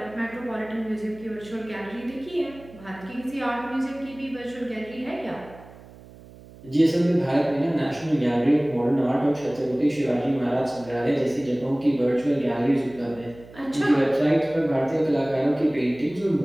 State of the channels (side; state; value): right; noise; hum, 20 dB below the sound